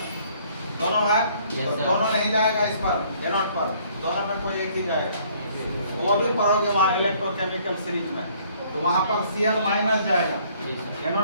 दोनों है, तो दोनों नहीं जाएगा इस पर, एनोड पर, दोनों में कोई एक ही जाएगा। वो भी पढ़ोगे वहाँ इलेक्ट्रोकेमिकल सीरीज में, तो वहाँ पर Cl माइनस जाएगा,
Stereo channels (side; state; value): both; inverted; correlation -0.61